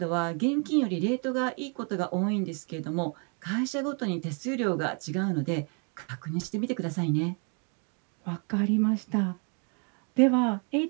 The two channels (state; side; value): quieter; left; 38.9 dB